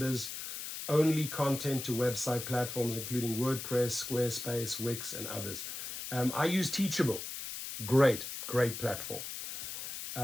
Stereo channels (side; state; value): left; noise; hiss, 7 dB below the sound